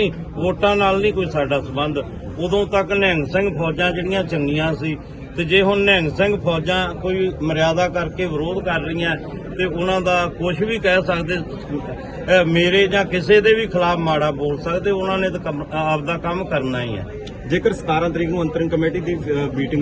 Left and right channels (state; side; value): identical; both; correlation 1.00